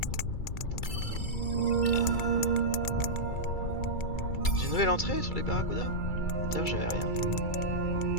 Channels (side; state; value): right; late; 2.3 ms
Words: J'ai une nouvelle entrée sur les barracudas. D'ailleurs, j'avais rien.